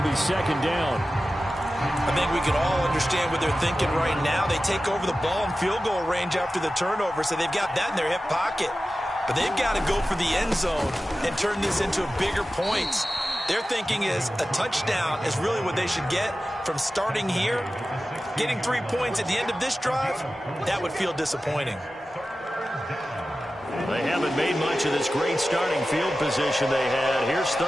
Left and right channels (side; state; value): both; normal; correlation 0.94